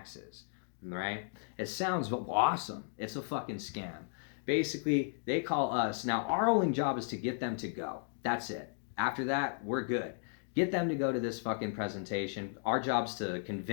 Right? It sounds awesome. It's a fucking scam. Basically, they call us. Now, our only job is to get them to go. That's it. After that, we're good. Get them to go to this fucking presentation. Our job's to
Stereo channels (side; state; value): right; silent; digital silence